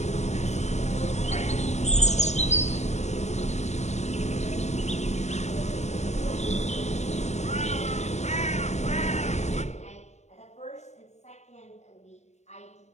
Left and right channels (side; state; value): right; late; 0.33 ms